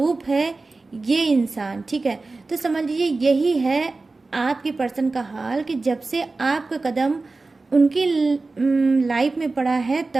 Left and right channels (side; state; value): left; quieter; 3.6 dB